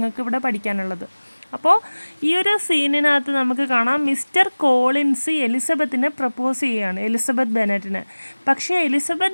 ഇവിടെ പഠിക്കാനുള്ളത്. അപ്പോൾ ഈ ഒരു സീനിനകത്ത് നമുക്ക് കാണാം മിസ്റ്റർ കോളിൻസ് എലിസബത്തിനെ പ്രപ്പോസ് ചെയ്യുകയാണ്, എലിസബത്ത് ബെന്നറ്റിന്. പക്ഷേ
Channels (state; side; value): inverted; both; correlation -1.00